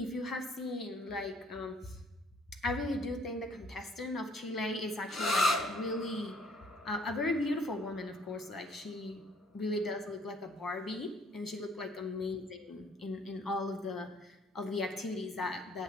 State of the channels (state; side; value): normal; both; correlation 0.61